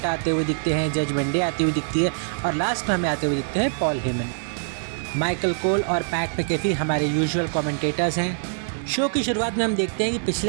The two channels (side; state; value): left; silent; digital silence